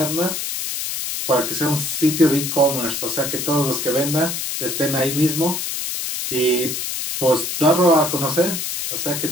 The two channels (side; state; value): left; noise; hiss, 3 dB below the sound